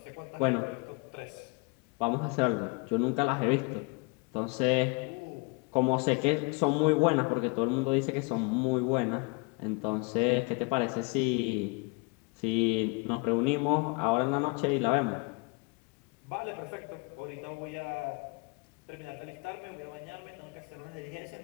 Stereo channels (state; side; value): quieter; right; 31.3 dB